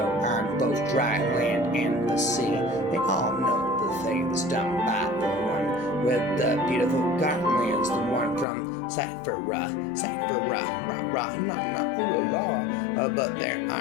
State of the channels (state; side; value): drops out; right; at 8.5 s